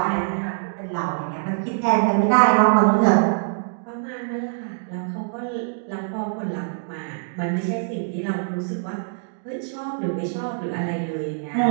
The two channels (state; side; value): silent; left; digital silence